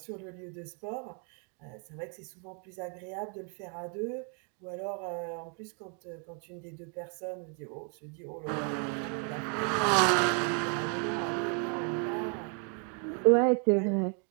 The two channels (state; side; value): quieter; left; 39.5 dB